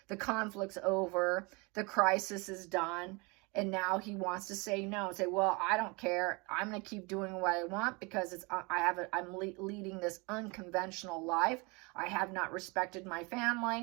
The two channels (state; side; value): quieter; left; 28.1 dB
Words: The conflict's over. The crisis is done. And now he wants to say no. Say, well, I don't care. I'm going to keep doing what I want because I'm leading this unconventional life. I have not respected my